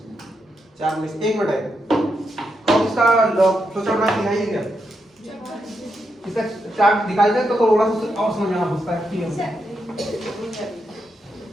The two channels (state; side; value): normal; both; correlation 0.83